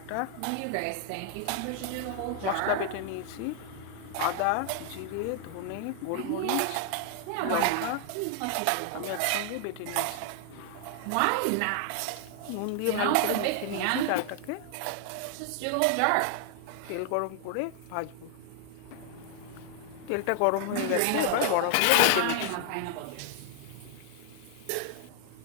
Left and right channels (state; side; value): different; both; correlation 0.00